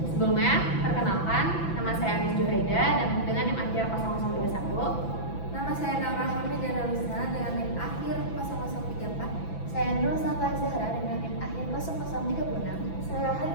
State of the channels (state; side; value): late; right; 6.0 ms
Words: Sebelumnya, perkenalkan, nama saya Anis Juhaida dan dengan NIM akhir 0021. Nama saya Naura Hamidana Rusna dengan NIM akhir 0034. Saya Nurul Safa Zahra dengan NIM akhir 0036. Saya